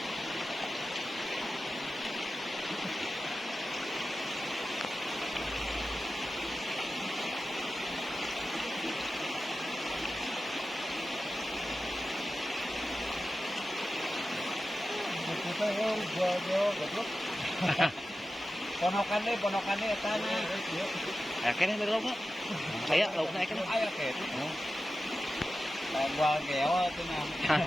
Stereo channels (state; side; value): normal; both; correlation 0.93